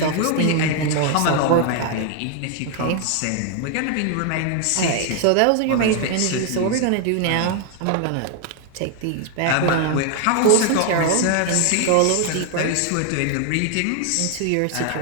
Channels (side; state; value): both; different; correlation 0.00